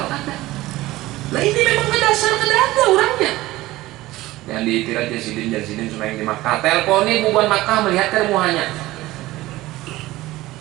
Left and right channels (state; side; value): quieter; left; 17.7 dB